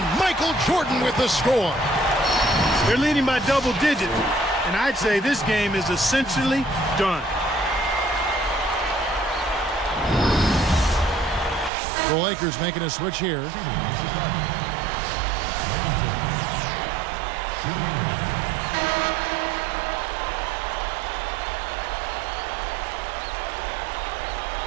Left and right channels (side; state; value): left; drops out; at 11.7 s